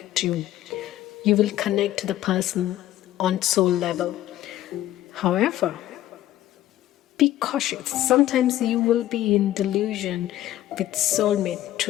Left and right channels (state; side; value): quieter; right; 13.7 dB